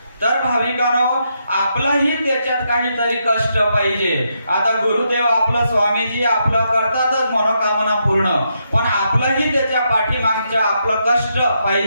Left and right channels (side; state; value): both; inverted; correlation -0.80